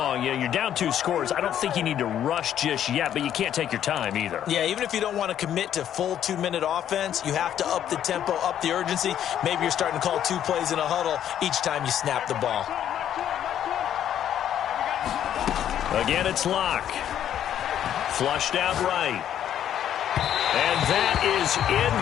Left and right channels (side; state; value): right; quieter; 10.3 dB